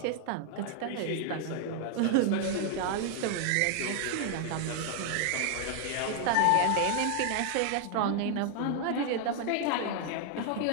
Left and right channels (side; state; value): both; different; correlation 0.00